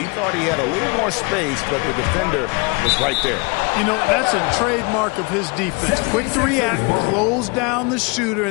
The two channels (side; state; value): right; quieter; 30.1 dB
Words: thought he had a little more space, but the defender was right there. You know, that's a trademark of his defense. Quick to react, close down the shooter,